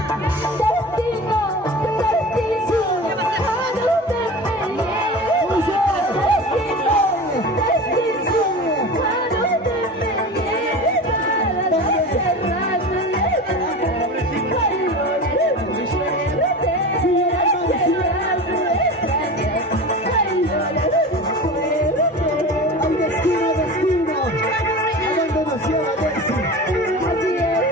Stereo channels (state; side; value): normal; both; correlation 0.32